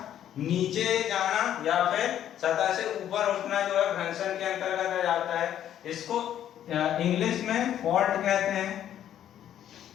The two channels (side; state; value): right; quieter; 10.8 dB